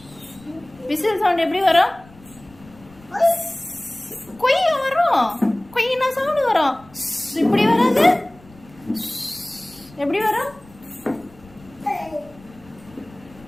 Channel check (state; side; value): noise; left; rumble, 25 dB below the sound